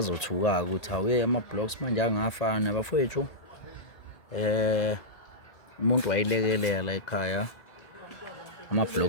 ukuthi awuye ama-blocks manje angafana bafethu. Umuntu wayilekelela ekhaya,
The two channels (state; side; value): late; right; 1.8 ms